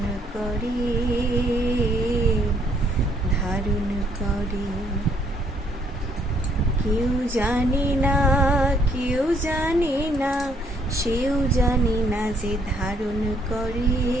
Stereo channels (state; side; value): normal; both; correlation 0.67